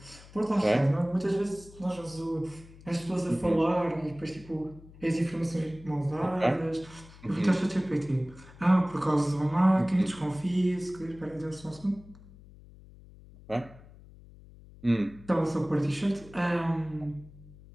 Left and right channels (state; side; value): noise; left; hum, 21 dB below the sound